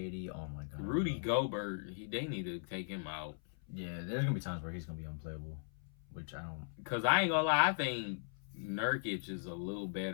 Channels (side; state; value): right; silent; 52 dB below the other